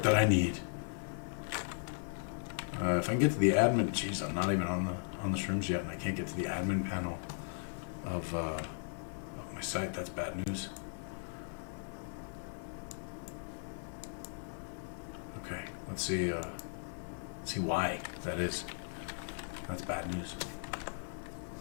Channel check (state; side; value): silent; right; 53 dB below the other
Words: that I need. If I can get to the admin, geez, I'm not even on the shrooms yet, and I can't get to the admin panel of my site. That's bad news. Okay, let's see why that is. That's bad news.